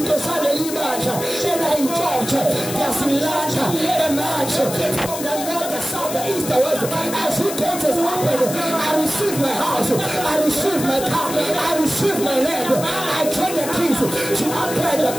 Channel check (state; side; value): noise; left; hiss, 8 dB below the sound